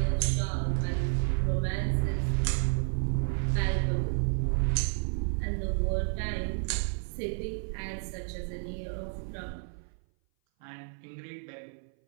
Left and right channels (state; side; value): silent; left; 57 dB below the other